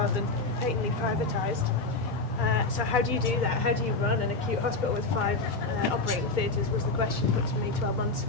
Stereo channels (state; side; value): quieter; right; 3.3 dB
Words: than patently privatised. So how do you do that? How do you run an acute hospital with 5 operating theatres was the question put to me 12 months